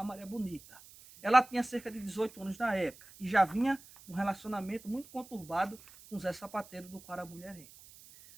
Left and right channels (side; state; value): right; noise; hiss, 21 dB below the sound